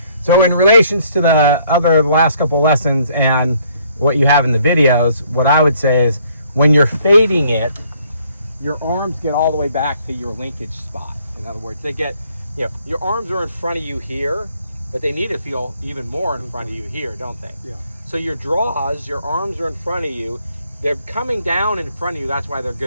So in relations to the last couple of lessons and what you have in the videos, what I would say is when you're fading it, your arms get all the way back to your linkage spot. In other words, they get, your arms are in front of you here, but they need to feel even more in front of you here, don't they? Yeah. So your draws, your arms are in front of you. They're coming down in front of you. That's why they're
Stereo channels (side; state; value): both; inverted; correlation -0.64